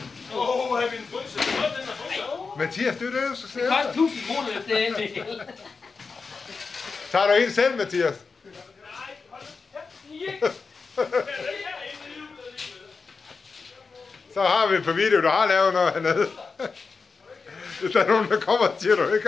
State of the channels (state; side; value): quieter; right; 4.7 dB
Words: Har vi en frys? Den er frys. Mathias, det er det, du skal se Det efter. koster 1000 kroner efter det hele. Tager du en selv, Mathias? Nej, hold da. Så har vi på video, du har lavet noget hernede. Hvis der er nogen, der kommer og siger, at du ikke